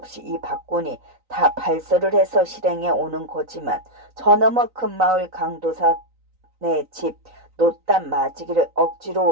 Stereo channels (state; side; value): late; left; 3.9 ms